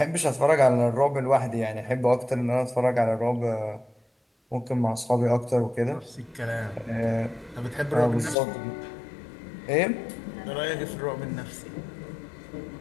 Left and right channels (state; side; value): drops out; right; at 8.3 s